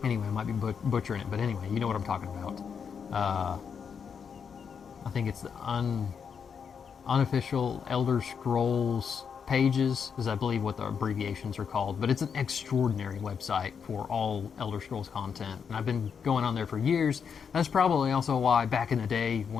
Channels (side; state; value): right; quieter; 6.7 dB